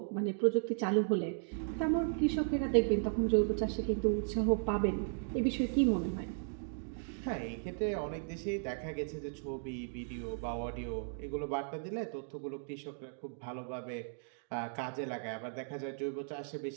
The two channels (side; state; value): left; silent; digital silence